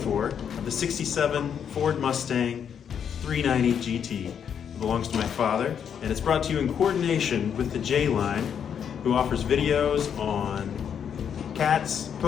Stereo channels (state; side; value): quieter; right; 8.0 dB